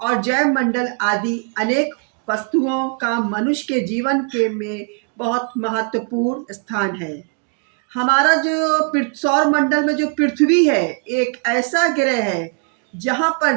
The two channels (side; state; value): left; quieter; 38.5 dB